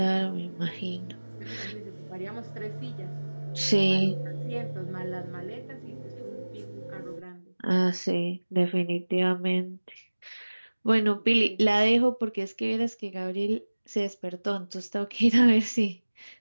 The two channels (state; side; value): inverted; both; correlation -1.00